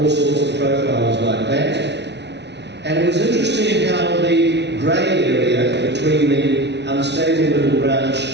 sorts of profiles like that. And it was interesting how the grey area between the unstable middle branch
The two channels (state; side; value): late; left; 0.50 ms